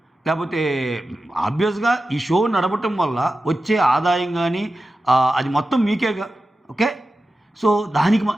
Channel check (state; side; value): normal; both; correlation 0.93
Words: లేకపోతే ఆబ్వియస్గా ఈ షో నడపటం వల్ల వచ్చే ఆదాయం కానీ అది మొత్తం మీకేగా. ఓకే, సో దానికి